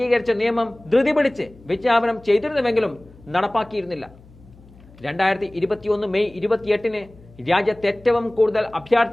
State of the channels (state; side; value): noise; left; hum, 24 dB below the sound